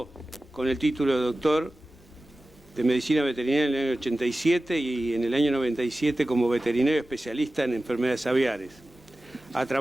con el título de doctor de Medicina Veterinaria en el año 87 y en el año 97 como veterinario especialista en enfermedades aviares. Ha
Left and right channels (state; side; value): normal; both; correlation 0.96